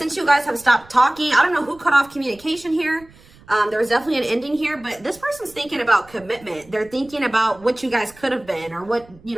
you guys have stopped talking, I don't know who cut off communication here. There was definitely an ending here, but this person's thinking about commitment. They're thinking about what you guys could have been or what, you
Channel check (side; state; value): right; noise; rumble, 25 dB below the sound